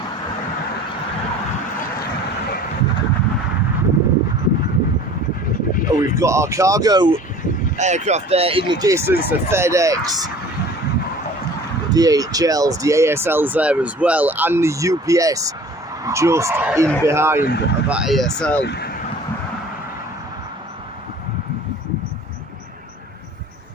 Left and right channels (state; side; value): normal; both; correlation 0.46